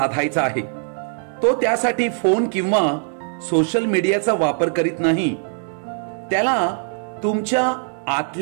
आहे. तो त्यासाठी फोन किंवा सोशल मीडियाचा वापर करीत नाही. त्याला तुमच्या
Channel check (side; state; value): left; silent; digital silence